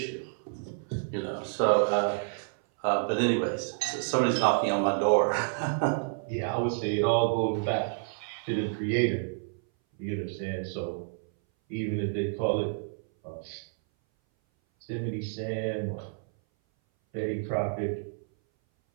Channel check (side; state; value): left; silent; 58 dB below the other